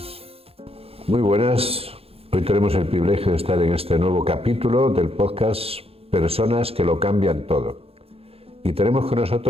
Muy buenas. Hoy tenemos el privilegio de estar en este nuevo capítulo del podcast Personas que lo cambian todo. Y tenemos con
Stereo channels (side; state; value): left; late; 0.28 ms